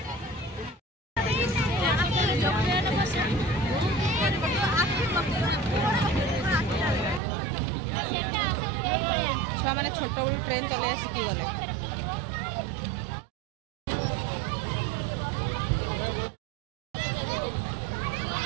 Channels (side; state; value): left; drops out; at 7.2 s